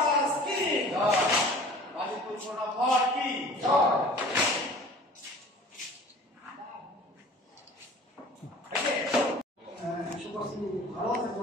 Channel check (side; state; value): both; normal; correlation 0.44